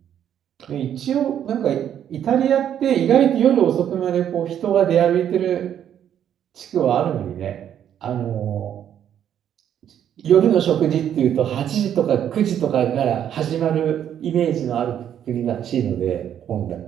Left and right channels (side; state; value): left; quieter; 9.8 dB